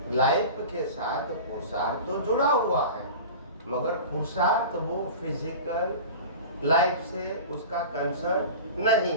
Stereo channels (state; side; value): inverted; both; correlation -0.34